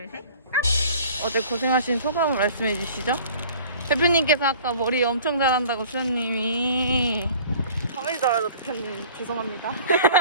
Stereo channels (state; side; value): inverted; both; correlation -0.48